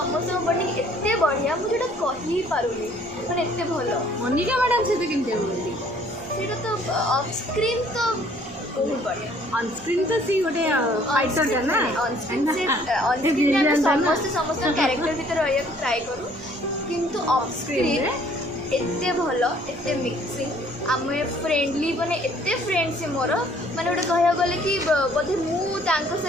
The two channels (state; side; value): noise; right; rumble, 25 dB below the sound